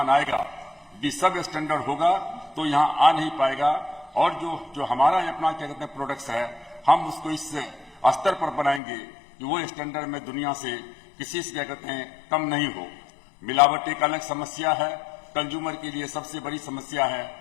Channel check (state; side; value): drops out; right; at 8.8 s